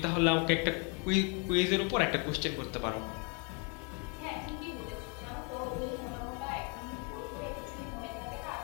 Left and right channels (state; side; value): quieter; right; 35.4 dB